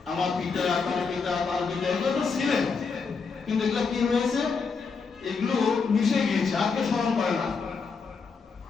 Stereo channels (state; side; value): quieter; right; 5.1 dB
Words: আমার পিতা, তার পিতা, তার পিতা, এগুলো তো ছিলেন, কিন্তু এগুলো কি হয়েছে? এগুলো মিশে গিয়েছে, আর কেউ স্মরণ করে না।